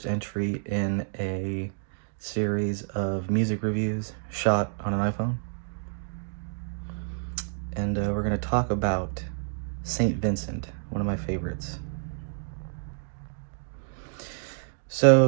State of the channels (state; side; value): silent; left; digital silence